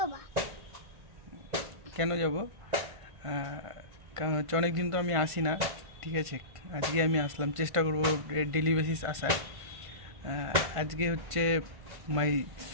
কেন যাব? কারণ হচ্ছে অনেকদিন তো আমি আসি না, ঠিক আছে। আজকে আমি আসলাম, চেষ্টা করবো ডেলি বেসিস আসার। আজকে হচ্ছে মাই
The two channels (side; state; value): left; late; 1.5 ms